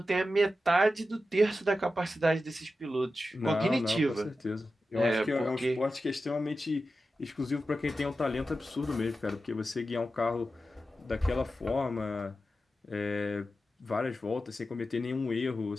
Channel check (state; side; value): normal; both; correlation 0.92